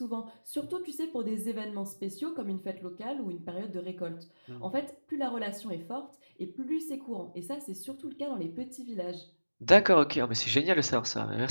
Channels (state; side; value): inverted; both; correlation -1.00